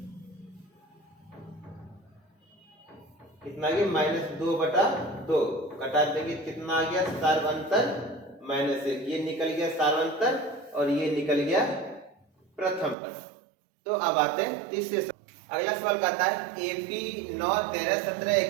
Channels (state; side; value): drops out; left; at 13.0 s